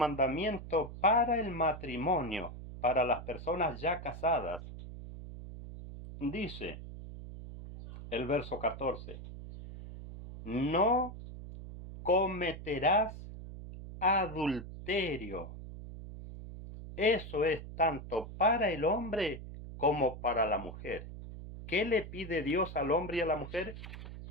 para el matrimonio, para las personas ya casadas. Dice, el verso 14. No cometerás adulterio. Eso es tanto para el hombre como para la mujer. ¿Qué le pide Dios al hombre y a la mujer?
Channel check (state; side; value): noise; right; hum, 11 dB below the sound